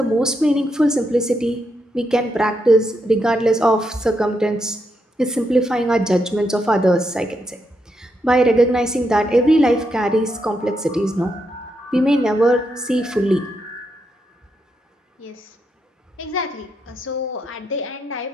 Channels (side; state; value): both; normal; correlation 0.81